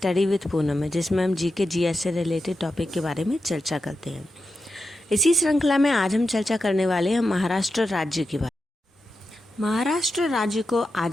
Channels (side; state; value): both; normal; correlation 0.89